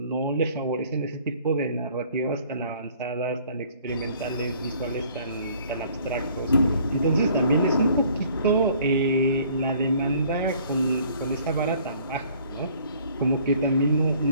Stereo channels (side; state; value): both; inverted; correlation -0.57